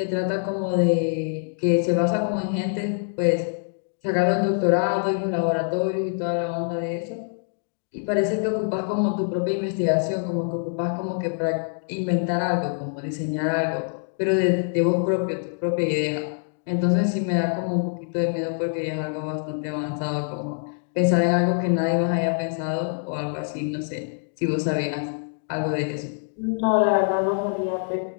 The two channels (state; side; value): silent; right; digital silence